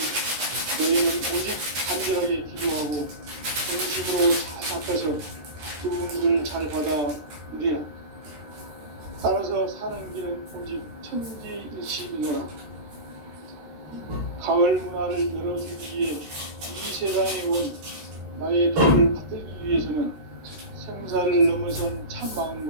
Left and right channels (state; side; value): late; left; 13 ms